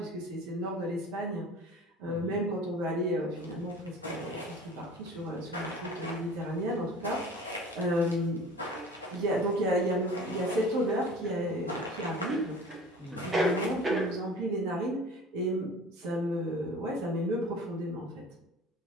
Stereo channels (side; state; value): both; normal; correlation 0.42